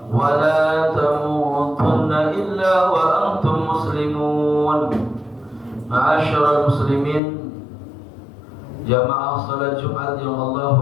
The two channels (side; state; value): right; drops out; at 7.2 s